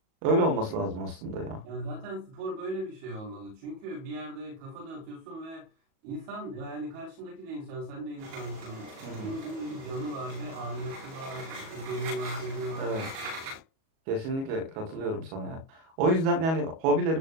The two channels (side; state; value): left; late; 37 ms